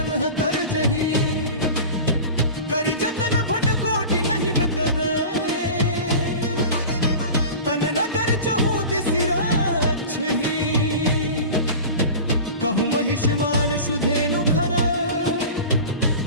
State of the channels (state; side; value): inverted; both; correlation -0.34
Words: तरजही। करि जतन भट कोटि नहीं बितरे, तन नगर चहु दिसि रक्षही। कहूँ महिषमान सुधेनु खर,